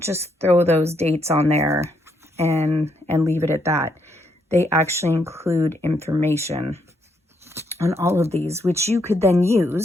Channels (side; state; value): both; normal; correlation 0.75